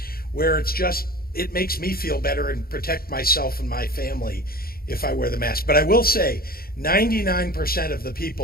where it makes me feel better and protect myself and my family if I wear the mask. But I will say, 99% of the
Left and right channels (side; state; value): right; late; 0.44 ms